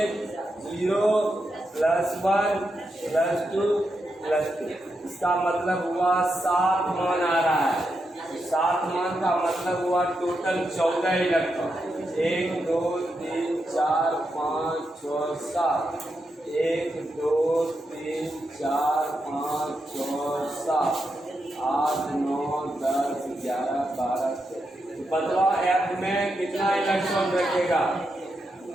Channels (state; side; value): normal; both; correlation 0.85